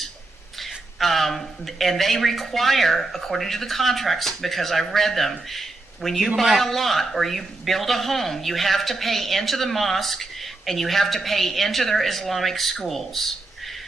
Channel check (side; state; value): left; quieter; 3.1 dB